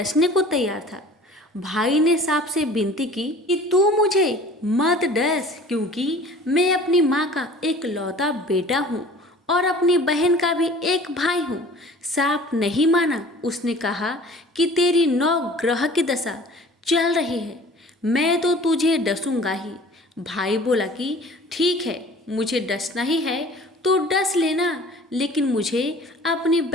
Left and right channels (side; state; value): both; normal; correlation 0.46